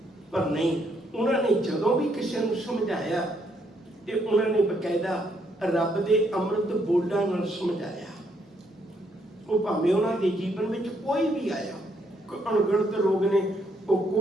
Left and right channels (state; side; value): normal; both; correlation 0.73